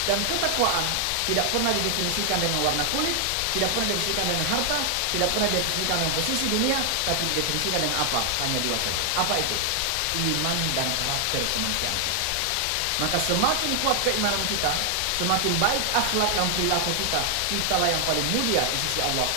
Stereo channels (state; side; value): different; both; correlation 0.00